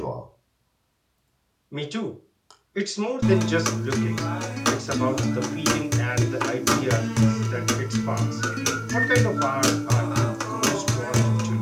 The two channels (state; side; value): identical; both; correlation 1.00